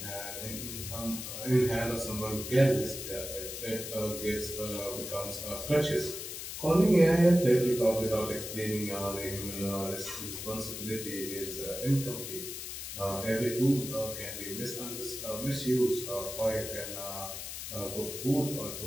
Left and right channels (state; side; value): noise; left; hiss, 7 dB below the sound